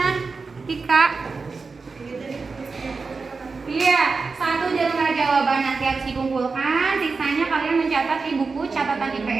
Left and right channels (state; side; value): quieter; left; 4.4 dB